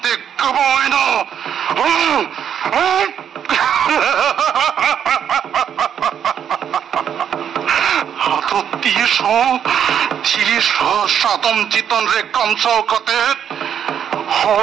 कबाइना तो तीस सातम चितन रे कमसाव कते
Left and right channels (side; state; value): left; quieter; 8.7 dB